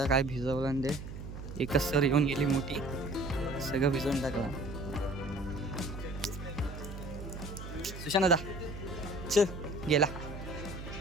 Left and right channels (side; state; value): right; noise; hum, 9 dB below the sound